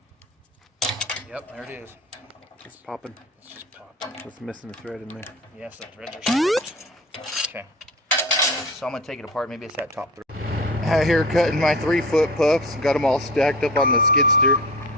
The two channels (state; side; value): normal; both; correlation 0.35